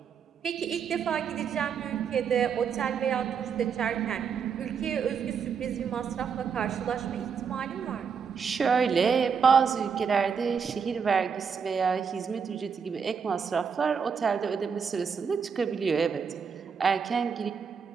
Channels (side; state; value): left; quieter; 6.4 dB